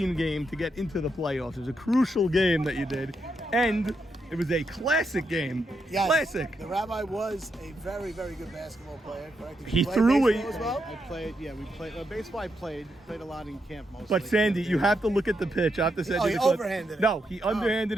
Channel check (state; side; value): normal; both; correlation 0.82